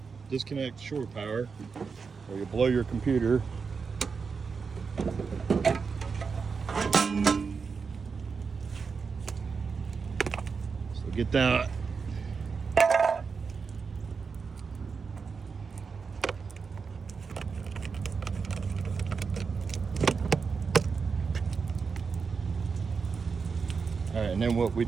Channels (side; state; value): left; quieter; 5.3 dB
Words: disconnect shore power or you blow your computer. So get that. All right, and then what we